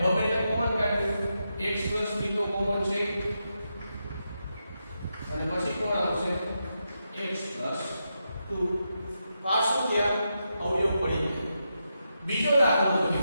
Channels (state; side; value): inverted; both; correlation -0.86